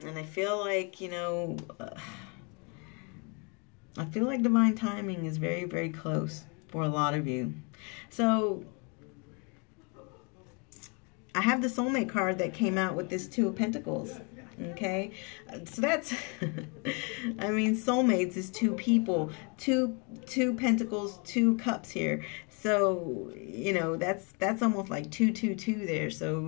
I feel like, you know, I feel like divine timing is very close for a lot of you. So I have the soulmate card that came out with this Two of Pentacles. Okay, so that's, I mean, soulmates is two people, two pentacles, 2 cups here. So, you know, that's almost like 222 there.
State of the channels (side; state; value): right; quieter; 33.8 dB